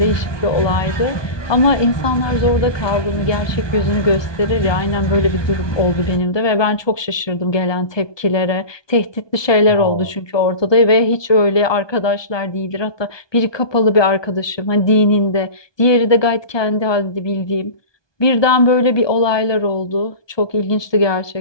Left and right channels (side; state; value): right; late; 1.2 ms